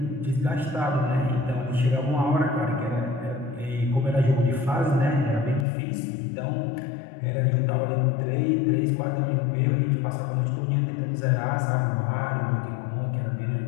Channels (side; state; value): right; drops out; at 5.7 s